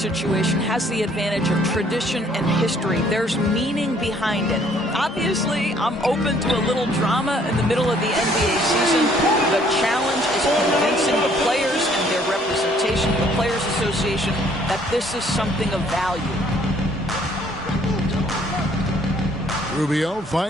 has the advantage of tradition and history. There's meaning behind it. Obviously, I'm open to a little drama in the middle of the NBA season. The challenge is convincing the players and their representation, the Players Association, that this is something of value. Rubio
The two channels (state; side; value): normal; both; correlation 0.62